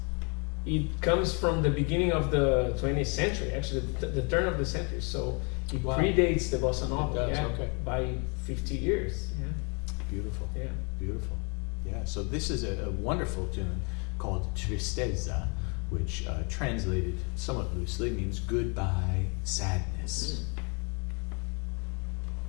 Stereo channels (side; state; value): right; quieter; 34.3 dB